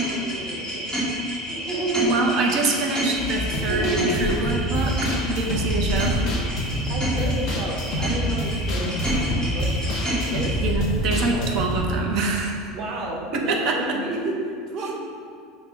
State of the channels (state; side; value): normal; both; correlation 0.33